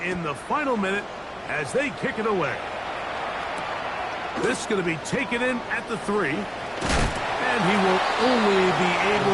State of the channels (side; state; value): both; identical; correlation 1.00